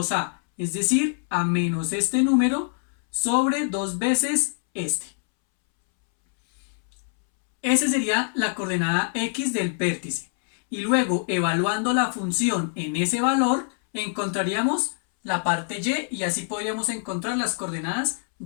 es decir, a menos este número sobre 2 veces este. Esa sería la coordenada x del vértice. Y luego, evaluando la función en ese valor, encontraríamos la parte y así podríamos encontrar las coordenadas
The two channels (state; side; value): silent; right; 62 dB below the other